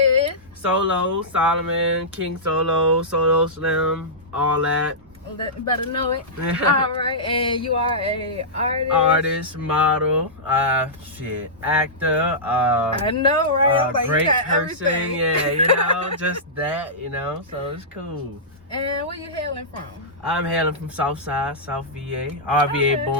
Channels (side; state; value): both; normal; correlation -0.15